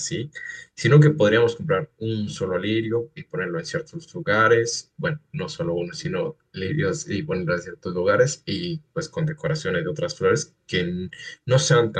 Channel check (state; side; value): identical; both; correlation 1.00